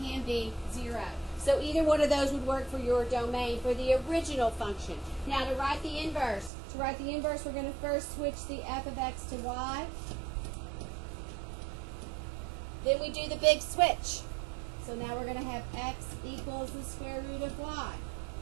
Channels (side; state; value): left; drops out; at 6.5 s